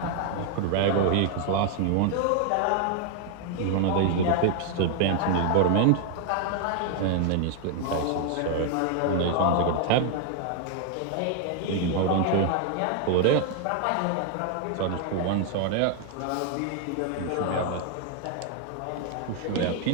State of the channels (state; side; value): different; both; correlation 0.00